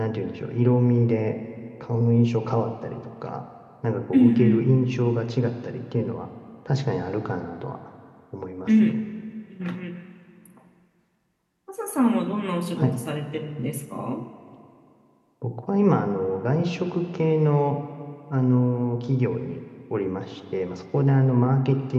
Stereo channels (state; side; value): identical; both; correlation 1.00